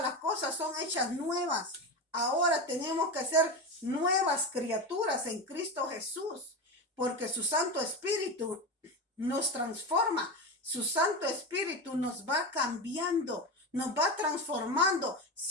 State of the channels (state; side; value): normal; both; correlation 0.20